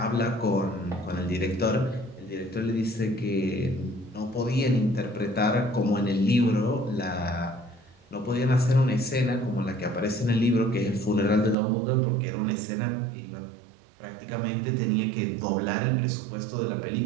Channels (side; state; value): left; drops out; at 11.6 s